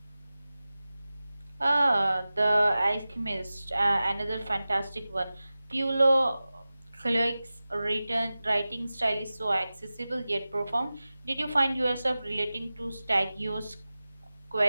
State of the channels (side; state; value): both; inverted; correlation -0.96